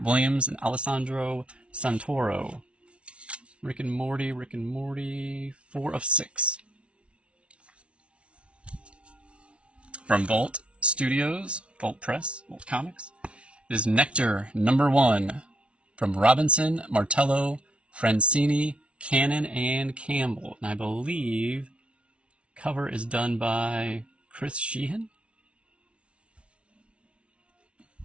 Williams, and Alessandro Santoro. Rick and Morty, 4 of 6. From Vault Studios, Vault Press, Vault Comics, it is Nectar #1 from Robinson, Martello, Francini, Cannon, and Campbell. And I believe cover is done by Chris Sheehan.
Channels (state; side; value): late; left; 0.060 ms